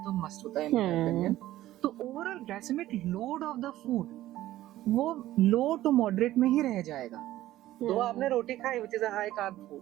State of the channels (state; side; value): quieter; left; 14.7 dB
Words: तो मस्ट होता है in my opinion, तो overall glycemic load of the food वो लो टू मॉडरेट में ही रह जाएगा। तो आपने रोटी खाई which is a high carb food,